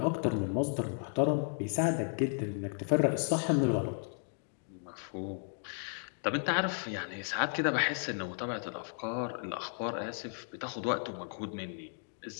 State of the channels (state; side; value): silent; right; 55 dB below the other